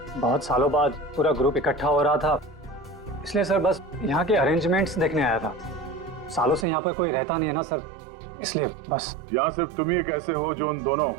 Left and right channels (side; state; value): left; drops out; at 6.7 s